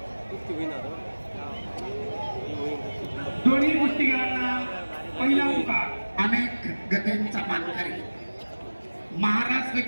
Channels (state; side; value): inverted; both; correlation -1.00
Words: दोन्ही कुस्तीगीरांना पहिला पुकार. अनेक गतींचा मानकरी महाराष्ट्र